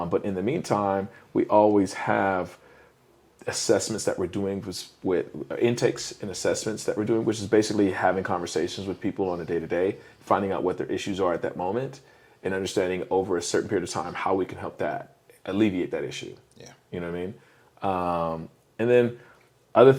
in the meantime, we always have assessments that we're doing with intakes and assessments that we're doing, which is basically having conversations with people on a day-to-day, finding out what their issues are at that moment, and understanding over a certain period of time how we can help that alleviate that issue. Yeah. You know what I mean? And then other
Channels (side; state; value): both; identical; correlation 1.00